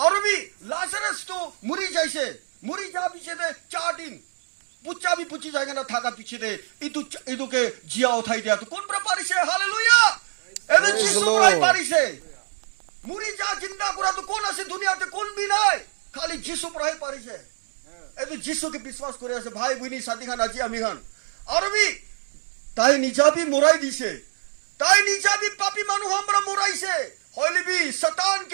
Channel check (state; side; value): silent; left; digital silence